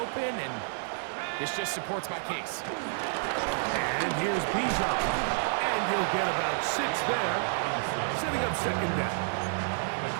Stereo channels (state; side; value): silent; left; 58 dB below the other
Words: and this just supports my case. And here's Bijan. And he'll get about 6 there, setting up 2nd down. The